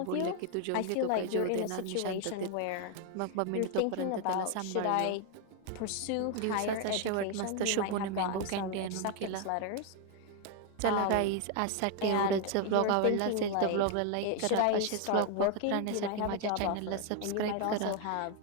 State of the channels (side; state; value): both; different; correlation 0.00